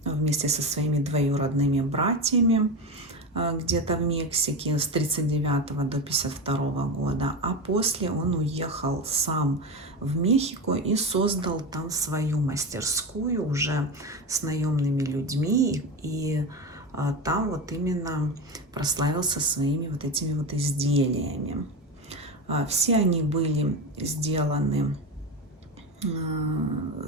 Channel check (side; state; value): both; normal; correlation 0.20